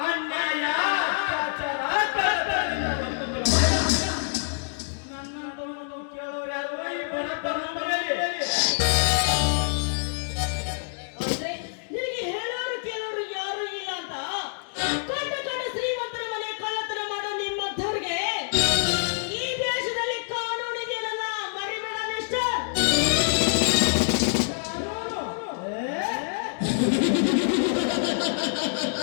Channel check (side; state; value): right; silent; 61 dB below the other